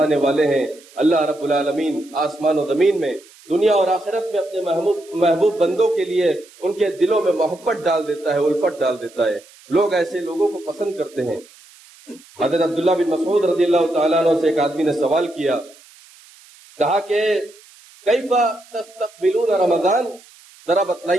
والے ہیں، اللہ رب العالمین آسمان و زمین میں، دنیا اور آخرت میں اپنے محبوب بندوں کے لیے ان کے دلوں میں محبت ڈال دیتا ہے، الفت ڈال دیتا ہے۔ لوگ ایسے لوگوں کو پسند کرتے ہیں۔ حضرت عبداللہ بن مسعود رضی اللہ تعالیٰ عنہ سے ایک آدمی نے سوال کیا، کہا کہ کیف تستقبلون رمضان، ذرا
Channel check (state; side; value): noise; right; hiss, 25 dB below the sound